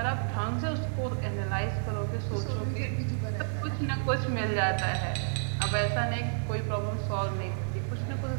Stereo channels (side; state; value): left; silent; digital silence